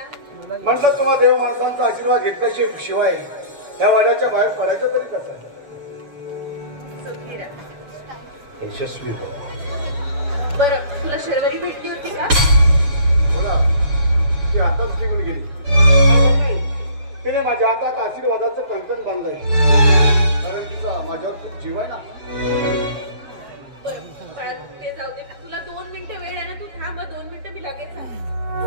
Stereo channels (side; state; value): left; late; 7.0 ms